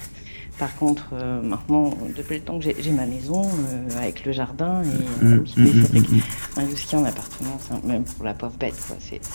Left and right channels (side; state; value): both; inverted; correlation -1.00